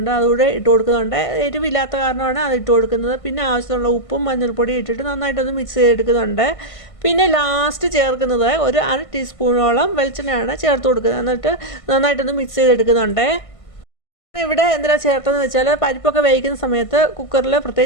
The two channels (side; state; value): right; late; 1.5 ms